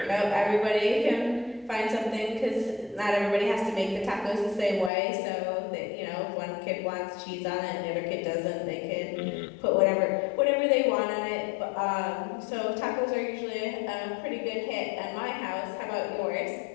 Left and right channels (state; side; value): drops out; right; at 4.9 s